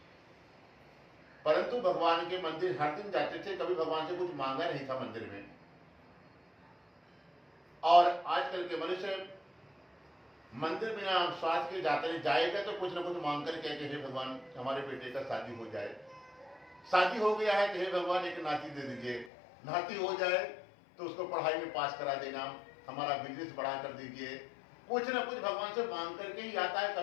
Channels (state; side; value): drops out; right; at 19.3 s